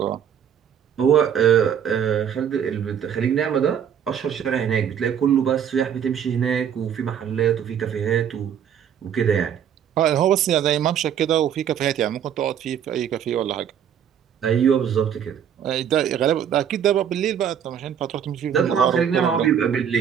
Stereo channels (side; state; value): left; quieter; 8.7 dB